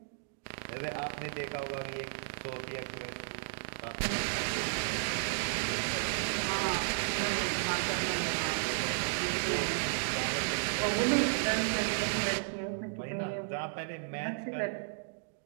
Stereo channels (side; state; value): left; silent; digital silence